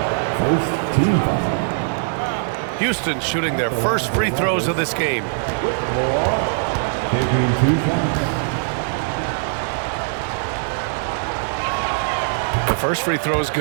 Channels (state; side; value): silent; left; digital silence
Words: First team foul. Houston shooting their first free throws of this game. Taking 2 shots. The first free throw is